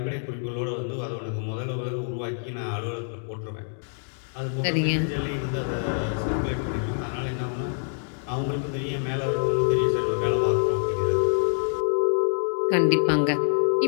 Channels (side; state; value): right; silent; digital silence